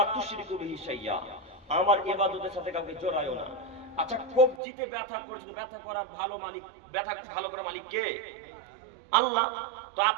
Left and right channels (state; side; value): drops out; left; at 4.6 s